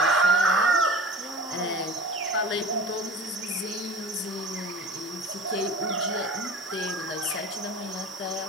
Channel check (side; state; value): both; normal; correlation 0.38